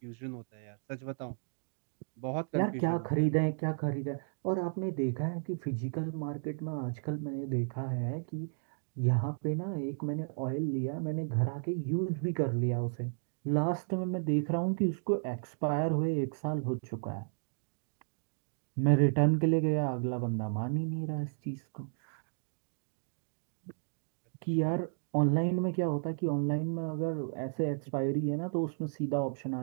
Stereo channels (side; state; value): left; silent; digital silence